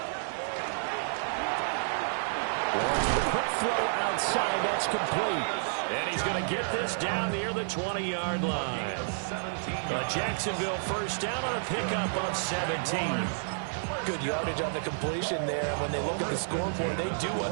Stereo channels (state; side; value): silent; left; 58 dB below the other